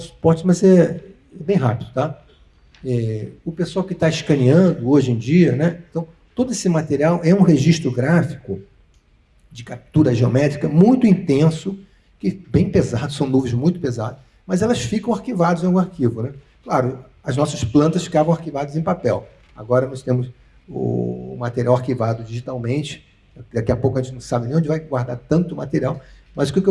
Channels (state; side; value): identical; both; correlation 1.00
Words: suportes, mas é bem rápido, tá? O pessoal que está escaneando hoje em dia, né? Então, todo esse material é um registro gráfico de captura geométrica muito intenso, que bem pesado, são nuvens muito pesadas, mas elas ficam arquivadas em algum arquivo, né? Claro, as nossas plantas ficavam arquivadas em papel. Agora nós temos o material arquivado digitalmente. Daqui a pouco a gente não sabe nem onde vai guardar tanto material, mas o que